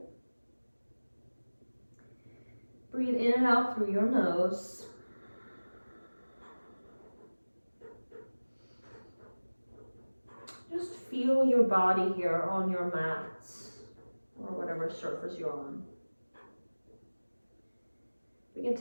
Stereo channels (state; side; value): inverted; both; correlation -1.00